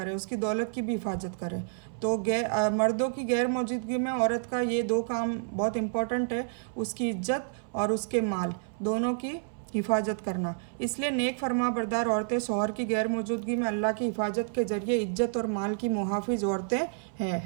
उसकी दौलत की भी हिफाजत करे। तो मर्दों की गैर मौजूदगी में औरत का ये दो काम बहुत इम्पोर्टेंट है, उसकी इज्जत और उसके माल दोनों की हिफाजत करना। इसलिए नेक फरमाबरदार औरतें शौहर की गैर मौजूदगी में अल्लाह की हिफाजत के जरिए इज्जत और माल की मुहाफिज औरतें हैं,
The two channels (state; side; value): silent; left; 58 dB below the other